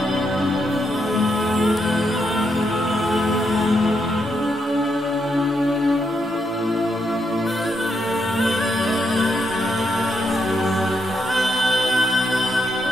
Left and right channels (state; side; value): normal; both; correlation 0.79